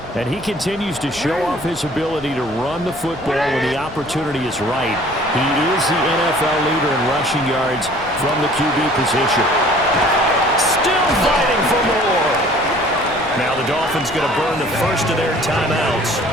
And he continues to show off his ability to run the football when the opportunity is right. He is the NFL leader in rushing yards from the QB position. Still fighting for more. Now the Dolphins going to burn the first of their timeouts.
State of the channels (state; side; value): noise; left; rumble, 18 dB below the sound